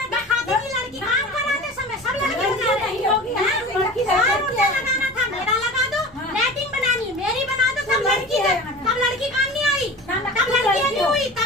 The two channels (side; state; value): right; noise; hum, 26 dB below the sound